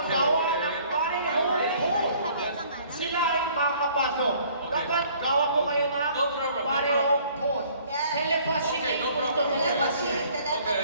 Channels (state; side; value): inverted; both; correlation -0.57